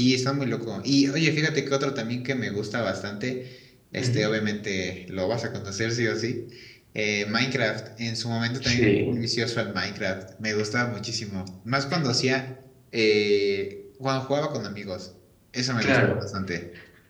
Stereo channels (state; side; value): identical; both; correlation 1.00